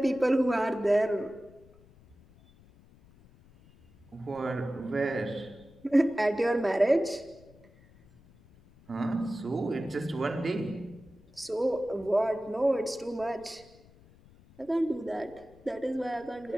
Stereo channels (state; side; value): noise; left; rumble, 26 dB below the sound